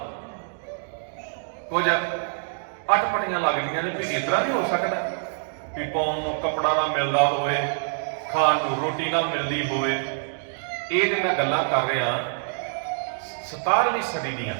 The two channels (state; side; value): silent; left; digital silence